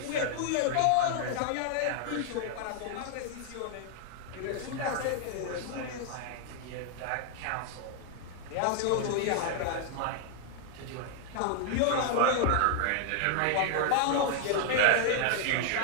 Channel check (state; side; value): different; both; correlation 0.00